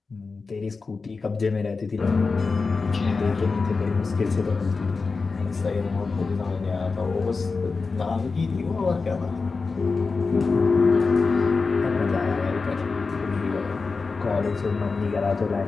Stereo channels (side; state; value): right; quieter; 4.4 dB